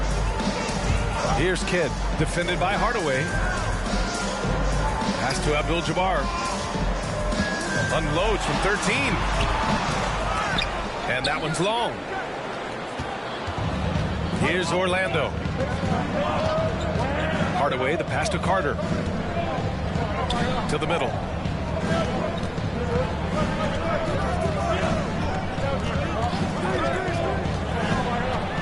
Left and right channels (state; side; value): identical; both; correlation 1.00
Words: Here's Kidd, defended by Hardaway. Pass to Abdul-Jabbar. Unloads from 13. And that one's long. Here's Orlando. Hardaway, the pass to Carter. To the middle.